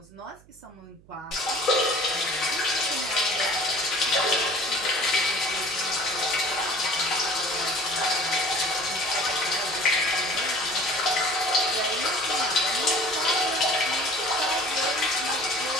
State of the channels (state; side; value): noise; right; hum, 27 dB below the sound